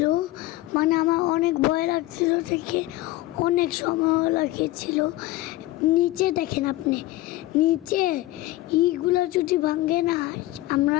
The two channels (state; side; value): quieter; right; 17.4 dB